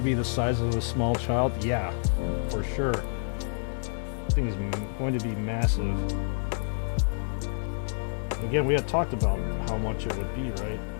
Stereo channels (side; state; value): right; silent; 59 dB below the other